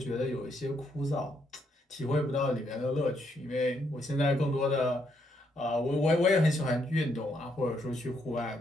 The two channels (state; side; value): normal; both; correlation 0.75